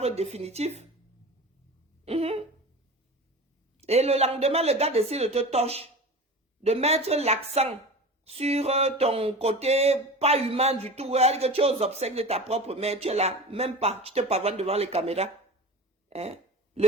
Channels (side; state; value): both; normal; correlation 0.33